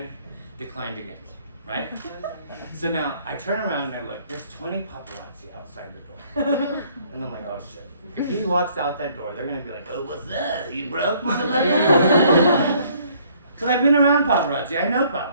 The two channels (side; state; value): both; inverted; correlation -0.61